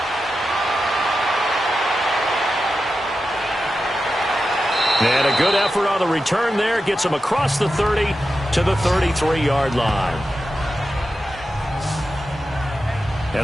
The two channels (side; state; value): both; normal; correlation 0.91